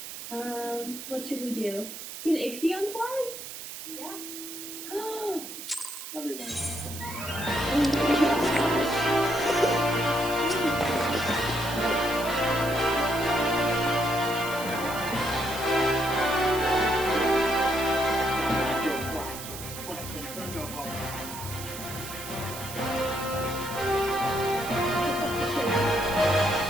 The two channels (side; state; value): right; noise; hiss, 10 dB below the sound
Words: What should we do? Can Ixion fly? Yeah. Everyone.